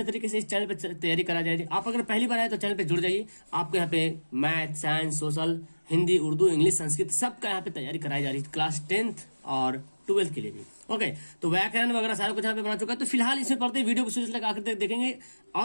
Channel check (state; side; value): inverted; both; correlation -1.00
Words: तरीके से इस चैनल पे तैयारी करा जाएगी। आप अगर पहली बार आए तो चैनल पे जुड़ जाइए। आपको यहाँ पे math, science, social, Hindi, Urdu, English, Sanskrit सबका यहाँ पे तैयारी कराई जा रही है, क्लास 10th और 12th के लिए भी। ओके, तो व्याकरण वगैरह सारा कुछ यहाँ पे बना चुका है। तो फिलहाल इसमें पढ़ते वीडियो को शुरू से लेकर आखिर तक देखेंगे।